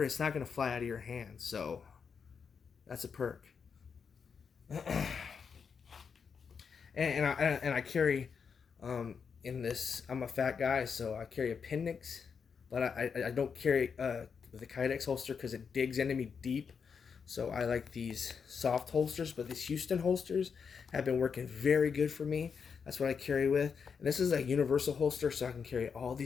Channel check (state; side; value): quieter; right; 6.2 dB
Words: it's not going to fly out of your hand. So that's a perk. and I carry in this. I'm a fat guy, so I carry appendix, but I don't carry the Kydex holster because it digs into me deep. So I like these soft holsters, but these Houston holsters have been working very good for me. That's what I carry with. And this is a universal holster, so I can carry all